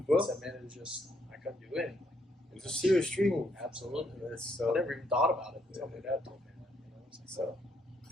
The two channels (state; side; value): normal; both; correlation 0.73